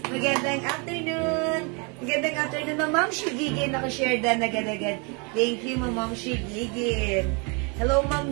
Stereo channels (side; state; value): left; quieter; 33.0 dB